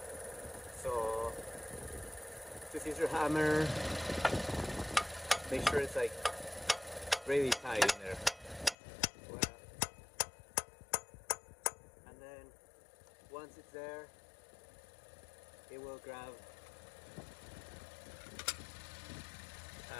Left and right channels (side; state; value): right; drops out; at 8.8 s